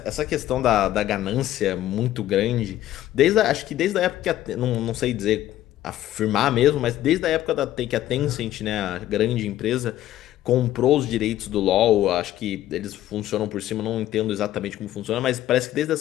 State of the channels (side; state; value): right; quieter; 13.5 dB